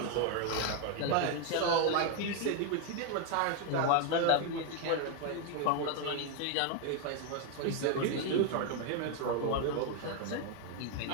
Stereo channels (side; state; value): both; different; correlation 0.01